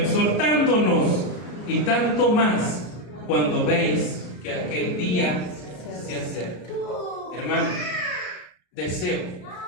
y tanto más cuando veis que aquel día se acerca. Hermano, deseo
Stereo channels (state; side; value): late; right; 34 ms